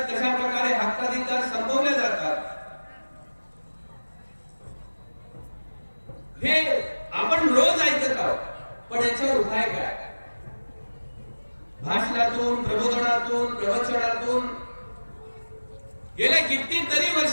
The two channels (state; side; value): inverted; both; correlation -1.00